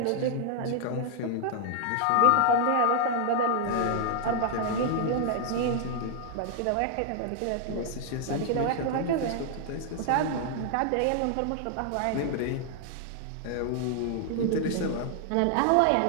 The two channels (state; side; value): different; both; correlation 0.00